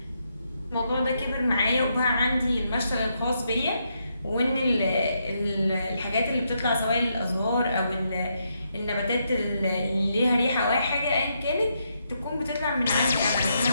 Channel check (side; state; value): both; inverted; correlation -0.79